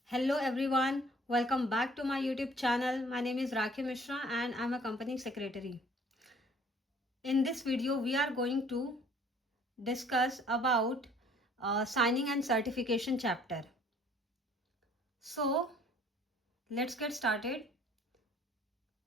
Hello everyone, welcome back to my YouTube channel. My name is Rakhi Mishra and I'm a company secretary. In this video, we are going to discuss about signing and certification chapter. So, let's get started.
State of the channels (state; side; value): normal; both; correlation 0.56